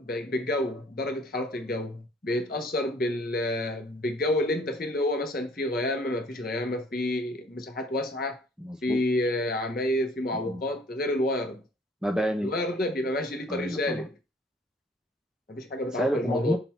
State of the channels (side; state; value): both; normal; correlation 0.58